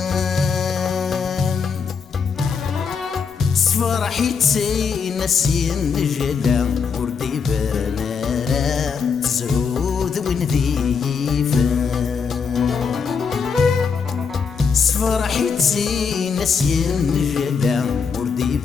صفرحي تسي نسين جدا وردي برنارا تزهود وين ذيفان صفرحي تسي نسين جدا وردي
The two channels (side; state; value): right; quieter; 5.8 dB